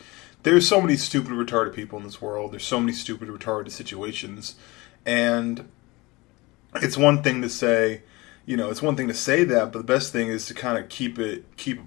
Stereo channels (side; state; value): right; quieter; 23.0 dB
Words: there's so many stupid, retarded people in this world. There's so many stupid, retarded situations. And it's one thing to say, that, but the best thing is to kind of keep it